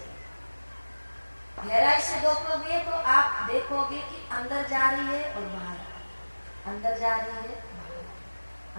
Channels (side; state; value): both; inverted; correlation -1.00